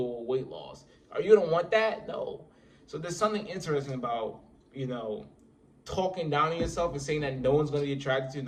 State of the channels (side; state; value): both; identical; correlation 1.00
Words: weight loss. Are you going to want that? No. So there's something interesting about, talking down on yourself and saying that no one's going to be attracted to you,